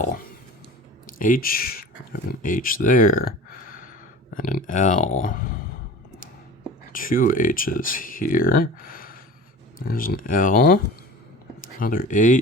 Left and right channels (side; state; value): both; normal; correlation 0.38